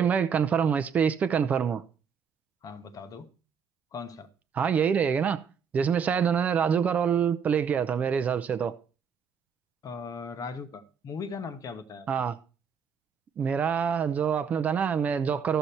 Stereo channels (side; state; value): left; quieter; 6.7 dB